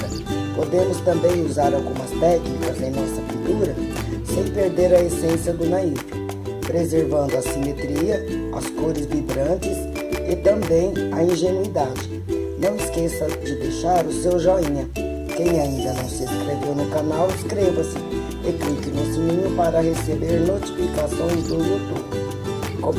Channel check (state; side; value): identical; both; correlation 1.00